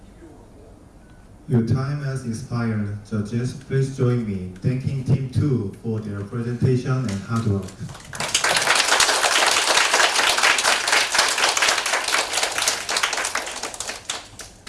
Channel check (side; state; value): both; identical; correlation 1.00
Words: 비용하고 Your time has expired. Judges, please join me thanking Team 2 for their presentation and hard work.